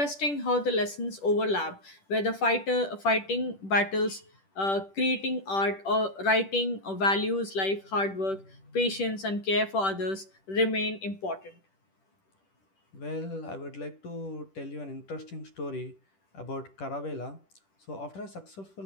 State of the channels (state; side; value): late; right; 10 ms